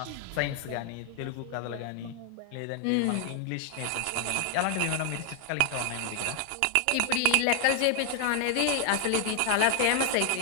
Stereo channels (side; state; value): both; different; correlation 0.00